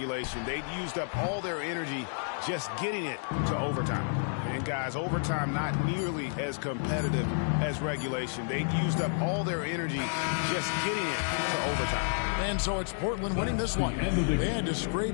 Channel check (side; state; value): right; silent; 57 dB below the other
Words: They've used up all their energy just getting it to overtime. And guys, overtime not nearly as competitive as regulation. They've used up all their energy just getting it to overtime. And so it's Portland winning this one. They had to scrape